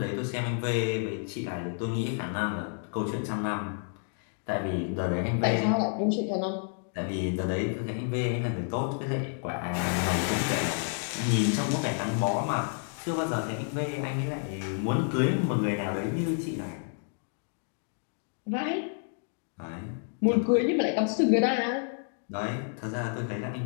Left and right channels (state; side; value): silent; right; 58 dB below the other